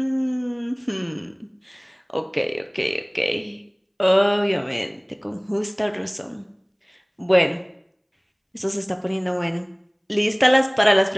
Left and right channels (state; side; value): identical; both; correlation 1.00